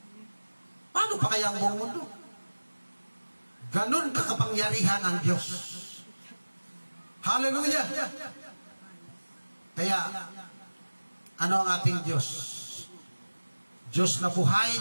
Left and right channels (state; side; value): inverted; both; correlation -1.00